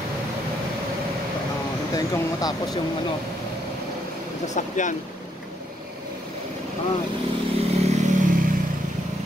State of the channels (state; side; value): normal; both; correlation 0.74